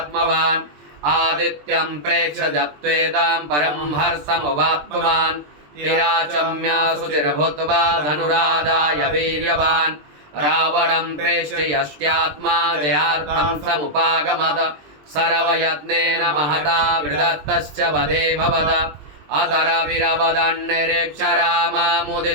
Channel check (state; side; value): late; left; 20 ms